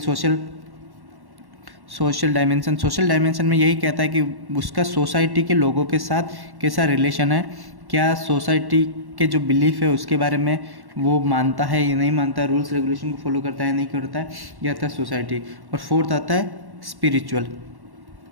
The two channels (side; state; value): left; late; 1.1 ms